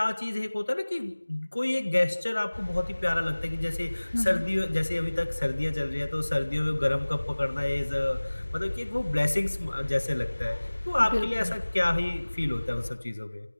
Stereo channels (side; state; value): both; inverted; correlation -1.00